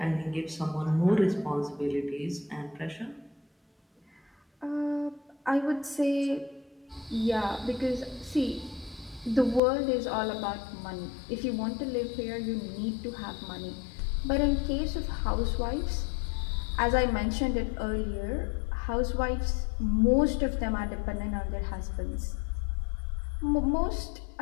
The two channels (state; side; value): drops out; right; at 9.6 s